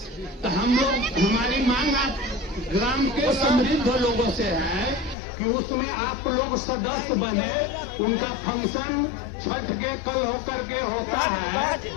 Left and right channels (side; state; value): right; drops out; at 5.2 s